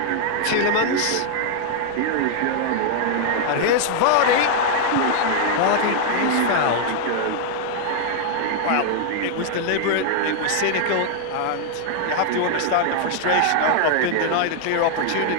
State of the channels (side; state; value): both; different; correlation 0.00